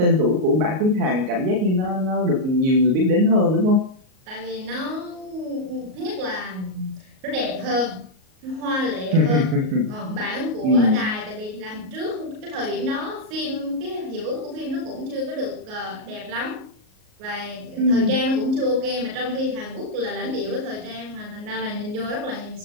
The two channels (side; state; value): left; late; 38 ms